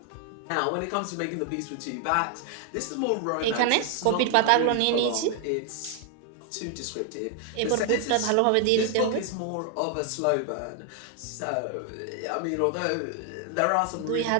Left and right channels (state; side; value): different; both; correlation 0.00